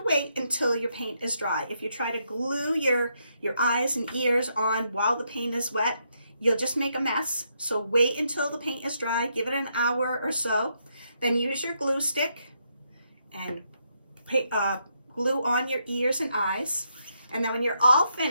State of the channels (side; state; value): both; inverted; correlation -0.78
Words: wait until your paint is dry. If you try to glue your eyes and ears on while the paint is wet, you'll just make a mess. So wait until the paint is dry, give it an hour or so. Then use your glue stick and glue on your ears and eyes. And then when you're all